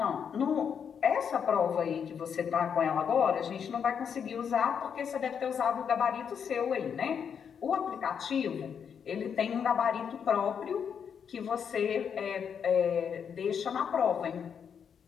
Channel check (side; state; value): right; quieter; 7.4 dB